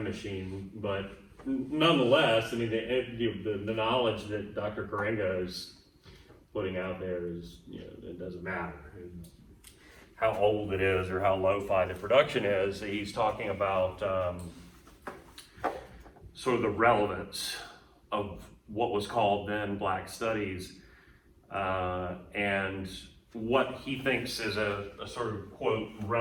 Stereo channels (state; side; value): identical; both; correlation 1.00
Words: machine, but nonetheless, the knowledge that Dr. Karenga is putting out there is, it doesn't matter how old it is or how lo-fi the production is. He's talking about sort of the relevance of what was called then Black Studies, and what he thinks is a sort of, quote,